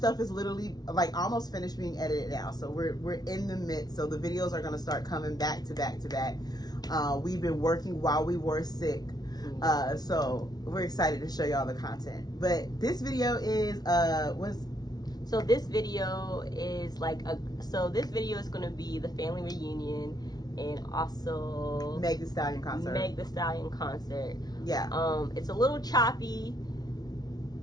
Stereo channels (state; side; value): late; right; 0.19 ms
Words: is literally almost finished being edited now. So we're in the midst. So the videos are gonna start coming back to back to back. We've been working while we were sick. So we're excited to show y'all the content. But this video is So this video is this video is gonna be the family reunion, and also Meg the Stallion concert. Yeah. It's a little choppy,